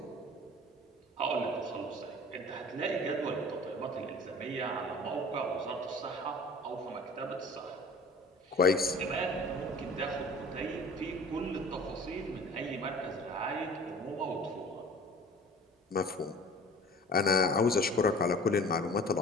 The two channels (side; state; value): both; normal; correlation 0.45